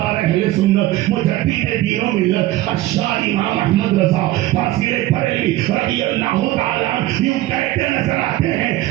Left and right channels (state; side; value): quieter; left; 16.1 dB